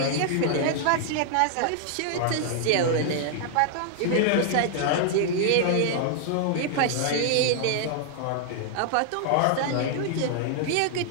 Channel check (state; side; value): different; both; correlation -0.01